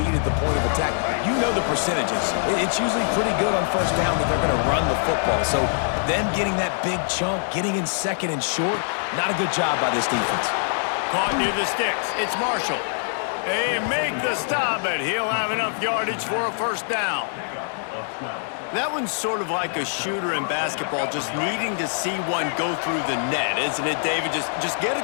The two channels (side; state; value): right; silent; digital silence